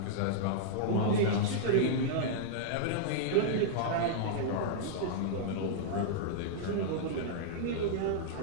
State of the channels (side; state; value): both; different; correlation -0.02